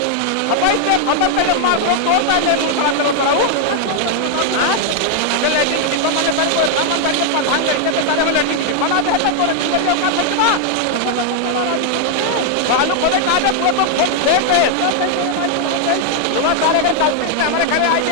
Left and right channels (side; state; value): both; different; correlation 0.00